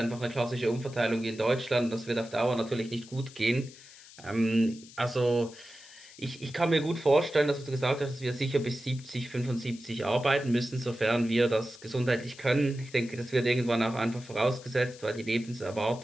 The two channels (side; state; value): left; noise; hiss, 20 dB below the sound